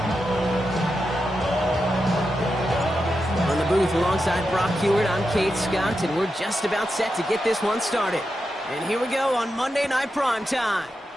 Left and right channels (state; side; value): normal; both; correlation 0.88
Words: On the booth alongside Brock Hewitt, I'm Kate Scott, and we're just about set to get this one started. And here we go on Monday Night Prime Time.